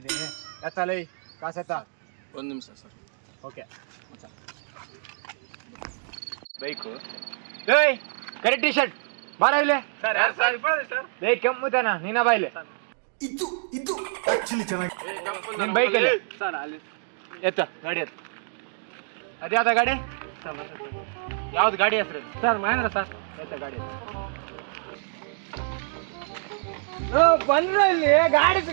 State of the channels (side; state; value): left; silent; digital silence